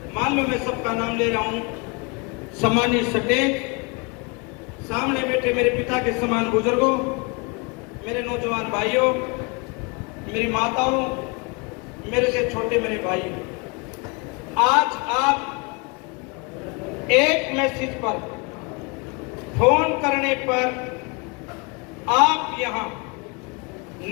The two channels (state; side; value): quieter; right; 30.7 dB